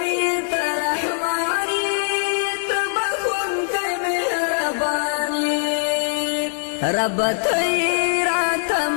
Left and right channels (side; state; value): right; silent; 65 dB below the other